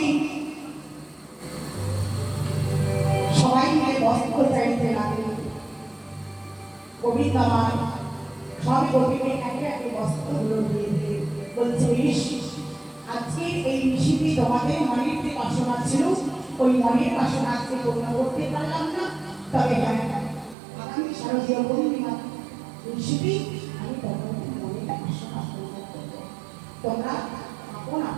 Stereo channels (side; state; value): left; drops out; at 20.6 s